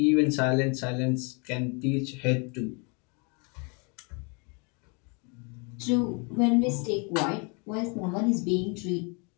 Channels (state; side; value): quieter; right; 33.6 dB